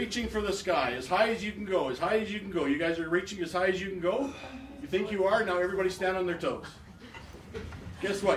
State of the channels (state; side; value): identical; both; correlation 1.00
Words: for the sky? As high as you can go, as high as you can go. You guys are reaching as high as you can go? You think you are? Now everybody stand on their toes. Guess